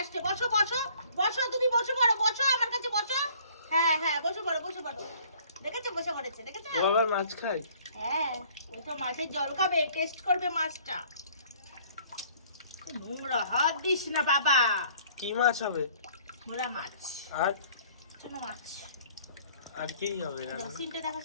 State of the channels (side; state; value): both; inverted; correlation -0.56